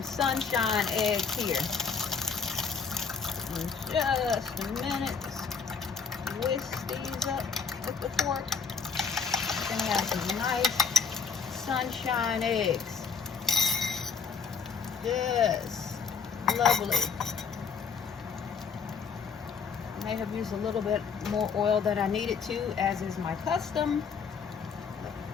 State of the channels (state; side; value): quieter; right; 5.8 dB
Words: sunshine eggs here in just a minute. Whisk these up with the fork. We're gonna have some nice sunshine eggs. Yes, lovely. I may have used a little bit more oil than I needed to, as is my custom.